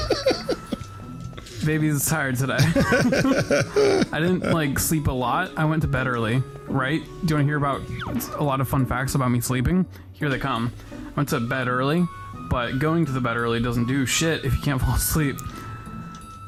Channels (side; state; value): both; identical; correlation 1.00